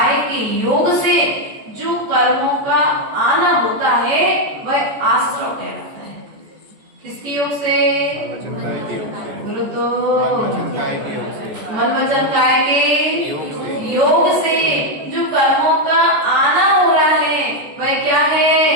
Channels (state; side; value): late; left; 14 ms